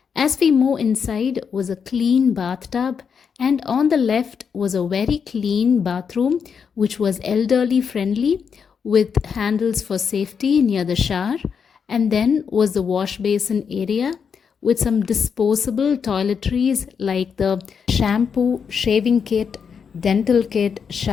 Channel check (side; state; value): right; quieter; 6.5 dB